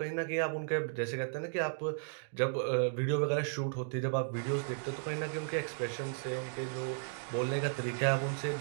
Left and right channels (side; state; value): left; silent; digital silence